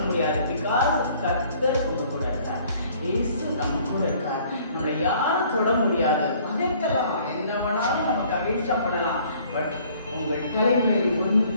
முடியாது. பிகாஸ் கர்த்தர் உங்க கூட இருக்கார். இயேசு நம்ம கூட இருக்கார். நம்மளை யாரும் தொட முடியாது. பகைக்கலாம், என்ன வேணாலும் நமக்கு அகைன்ஸ்டா பண்ணலாம். பட் உங்கள் தலைமையில்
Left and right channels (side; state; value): both; inverted; correlation -0.57